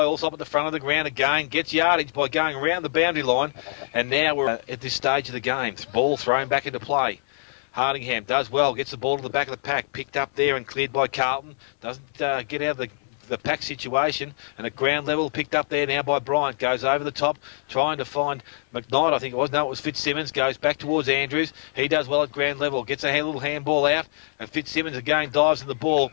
Allsop at the front of the ground again. Gets yardage by going around the boundary line. And now we're at this stage of the game. Ball thrown back into play. Hardingham does well, gets the ball to the back of the pack, picked up there and cleared by Carlton. Doesn't get out of the pack situation, and at ground level picked up there now by Bryant. Goes over the top, trying to find McKnight, I think it was. No, it was Fitzsimmons. Goes back towards Andrews. He does well at ground level. Gets a little handball out, and Fitzsimmons again dives in the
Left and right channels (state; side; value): silent; right; 61 dB below the other